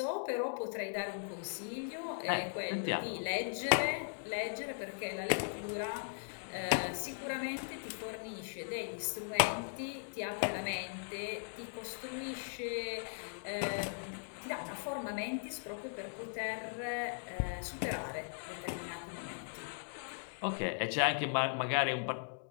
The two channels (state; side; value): silent; right; digital silence